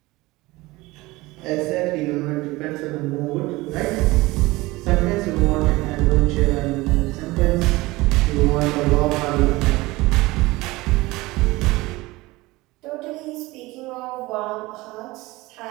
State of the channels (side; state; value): left; quieter; 20.5 dB